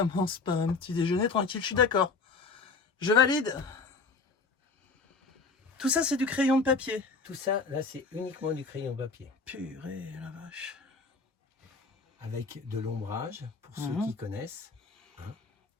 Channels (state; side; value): quieter; right; 4.4 dB